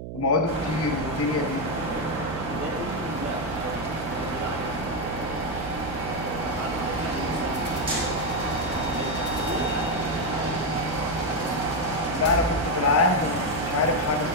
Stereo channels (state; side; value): noise; right; hum, 8 dB below the sound